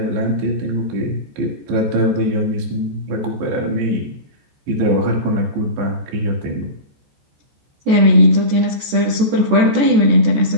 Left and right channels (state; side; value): late; left; 14 ms